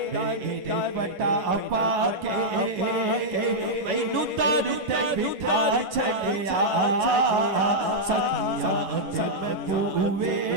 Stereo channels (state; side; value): late; left; 11 ms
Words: मेरे पटा पाके, मैनू दर ते बिठा छड़िया, सखिया जब पूवे